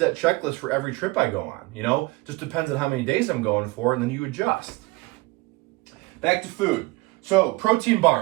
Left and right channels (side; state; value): left; quieter; 22.6 dB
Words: checklist for every trip I go on, Just depends on how many days I'm going for, and then you adjust. Back to food. So, protein